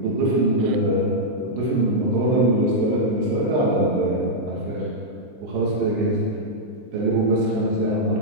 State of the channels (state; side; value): late; left; 24 ms